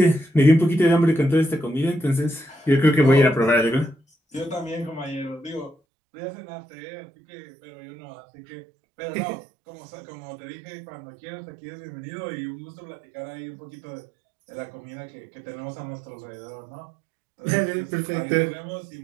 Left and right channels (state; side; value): drops out; left; at 5.8 s